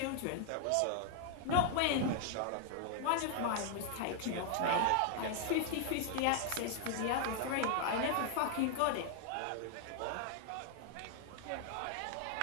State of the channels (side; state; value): both; different; correlation 0.00